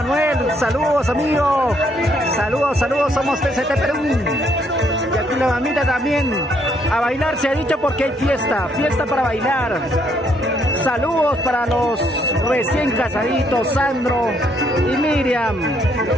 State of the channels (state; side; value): normal; both; correlation 0.71